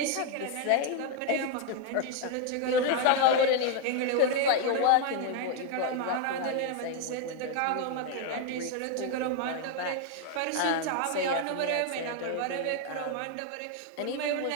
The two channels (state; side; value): different; both; correlation 0.01